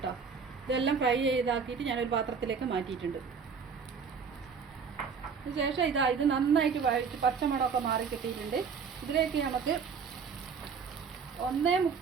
ഇതെല്ലാം ഫ്രൈ ചെയ്താക്കിയിട്ട് ഞാനൊരു പാത്രത്തിലേക്ക് മാറ്റിയിട്ടുണ്ട്. അതിനുശേഷം ഇത് നന്നായിട്ട് വഴറ്റി പച്ചമണമൊക്കെ മാറി കിട്ടിയിട്ടുണ്ട്. ഇതിലേക്ക് നമുക്ക്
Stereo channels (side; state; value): left; quieter; 5.9 dB